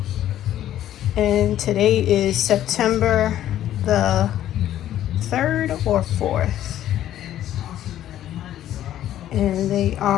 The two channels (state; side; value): quieter; right; 12.2 dB